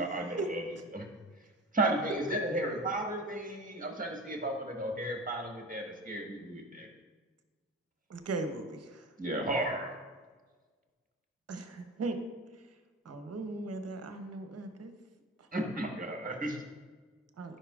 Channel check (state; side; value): normal; both; correlation 0.33